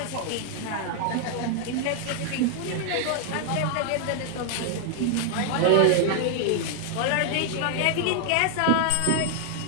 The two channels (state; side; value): different; both; correlation 0.00